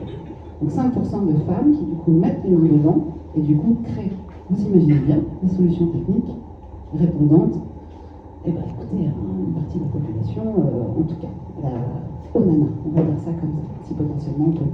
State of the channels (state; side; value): identical; both; correlation 1.00